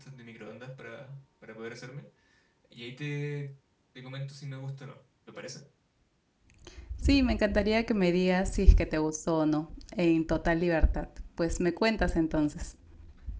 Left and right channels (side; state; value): both; identical; correlation 1.00